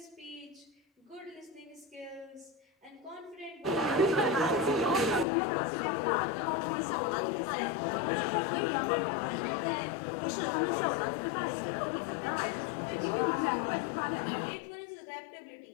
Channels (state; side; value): drops out; right; at 5.2 s